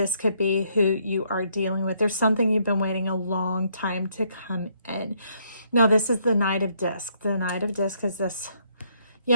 could be who you are dealing with. There's something you've been waiting a long time to come in. Now, this is the Knight of Disc. The Knight of Disc is this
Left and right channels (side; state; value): both; inverted; correlation -0.70